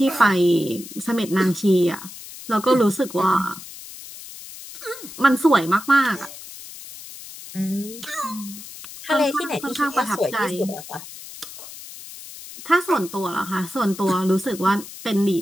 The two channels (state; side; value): noise; left; hiss, 14 dB below the sound